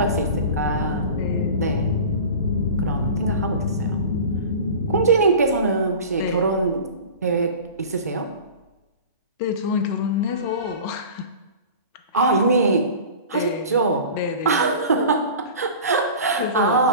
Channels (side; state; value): both; inverted; correlation -0.37